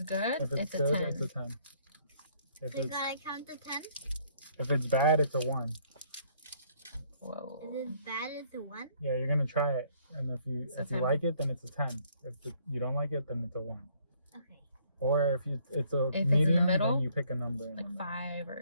good, If it's a good, 10. it's a 10. If So it's gotta count to 10? if it's bad, it's a 1. Whoa. If it's bad, it's a 1? Yeah, you're gonna try it, and if you a 10. like it, then it's a 10. If you don't like it, then it's a 1. Okay. Or if it's a If it's in medium, the middle, then you pick a number. In the Like middle. 5 or...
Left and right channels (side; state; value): both; inverted; correlation -0.64